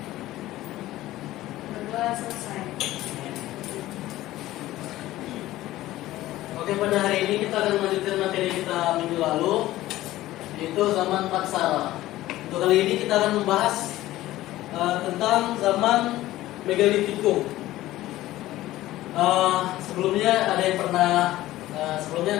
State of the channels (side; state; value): right; quieter; 15.8 dB